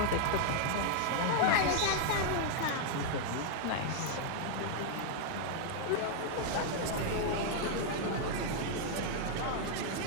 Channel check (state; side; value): different; both; correlation 0.00